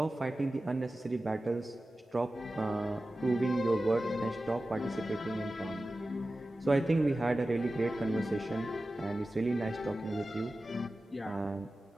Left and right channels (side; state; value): both; normal; correlation 0.95